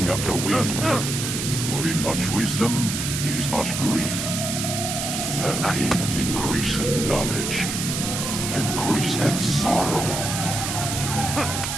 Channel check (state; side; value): noise; right; hiss, 3 dB below the sound